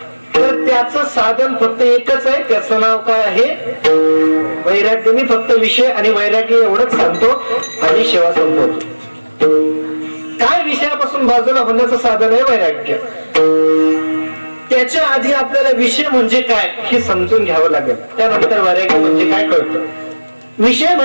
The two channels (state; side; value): inverted; both; correlation -1.00